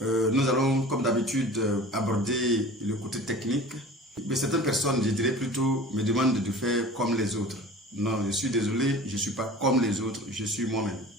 Nous allons, comme d'habitude, aborder le côté technique. Mais certaines personnes, je dirais plutôt, me demandent de faire comme les autres. Non, je suis désolé, je ne suis pas comme les autres, je suis moi-même.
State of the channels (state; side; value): normal; both; correlation 0.40